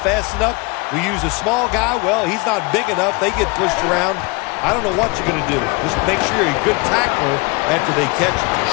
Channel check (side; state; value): right; quieter; 28.0 dB